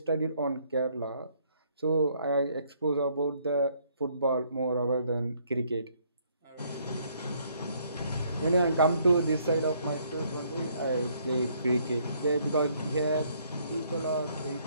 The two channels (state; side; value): inverted; both; correlation -0.67